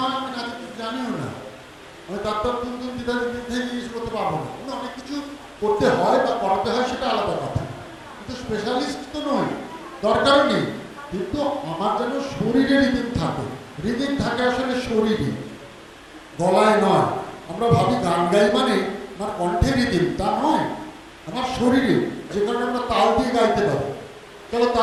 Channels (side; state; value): both; identical; correlation 1.00